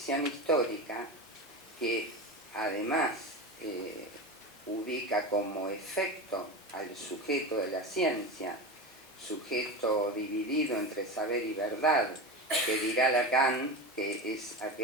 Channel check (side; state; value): both; normal; correlation 0.24